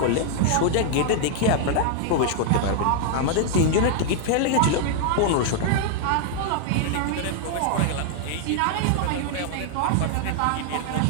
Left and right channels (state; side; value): different; both; correlation 0.00